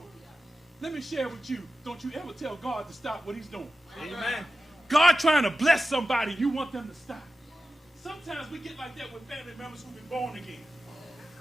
Let me share with you, don't you ever tell God to stop what he's doing. Amen. God trying to bless somebody, you want them to stop. Sometimes we get like that with family members who've been born again.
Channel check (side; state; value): both; normal; correlation 0.93